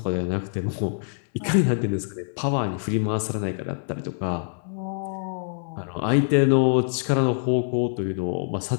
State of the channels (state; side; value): silent; right; digital silence